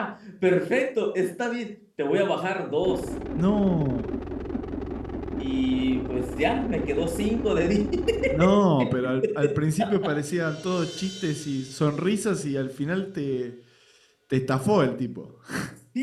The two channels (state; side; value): identical; both; correlation 1.00